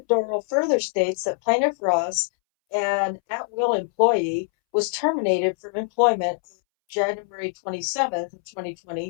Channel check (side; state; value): right; silent; 63 dB below the other